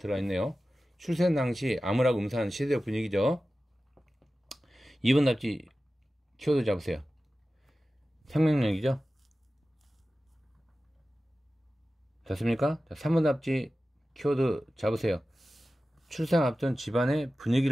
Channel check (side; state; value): both; normal; correlation 0.95